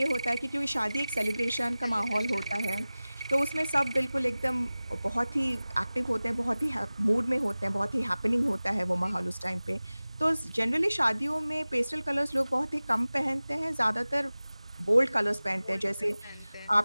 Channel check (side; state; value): both; inverted; correlation -0.98